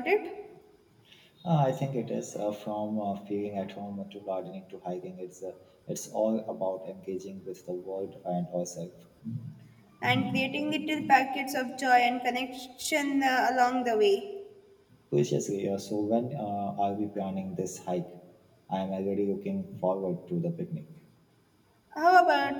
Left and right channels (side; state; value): both; identical; correlation 1.00